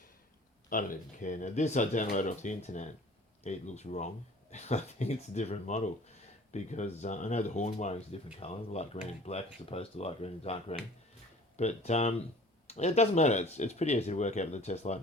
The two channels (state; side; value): normal; both; correlation 0.48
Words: I don't even care. Now this I downloaded off the internet. It looks wrong. I think it's a different model because I know the horn wiring is a different colour, light green and black as opposed to light green and dark green. But it doesn't matter. It's pretty easy to work out with a test light